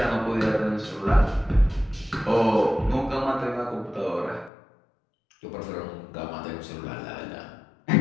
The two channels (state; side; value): drops out; right; at 4.5 s